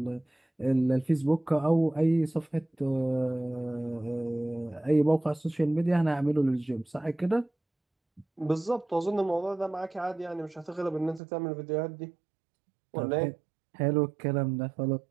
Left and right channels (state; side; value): drops out; left; at 11.2 s